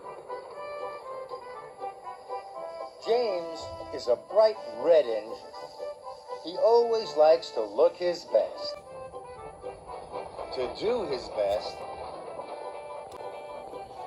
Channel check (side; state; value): both; identical; correlation 1.00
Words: James is a bright red engine. He always likes to look his best. To do his best.